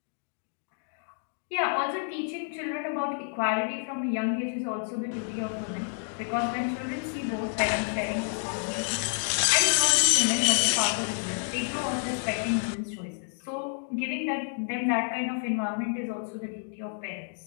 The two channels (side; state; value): right; silent; digital silence